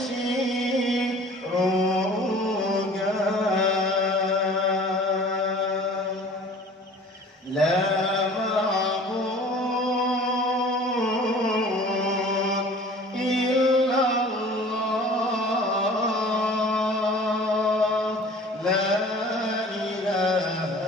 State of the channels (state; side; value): normal; both; correlation 0.46